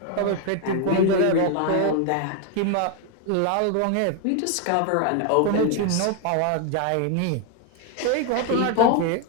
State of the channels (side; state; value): both; different; correlation 0.01